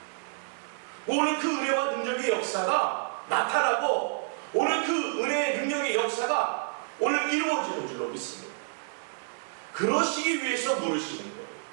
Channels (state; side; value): silent; left; 59 dB below the other